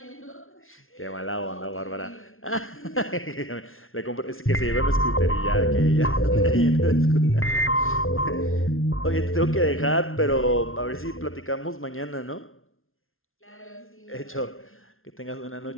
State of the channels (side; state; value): right; late; 0.61 ms